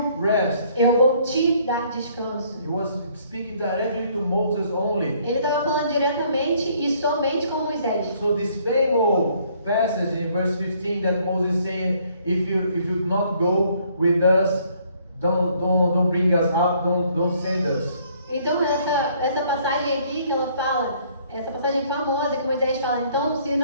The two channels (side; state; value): both; inverted; correlation -0.63